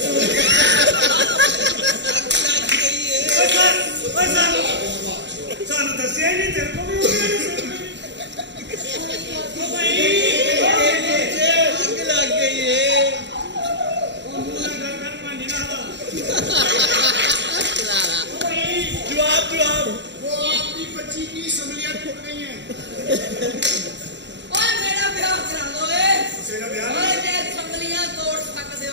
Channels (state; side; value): late; left; 0.52 ms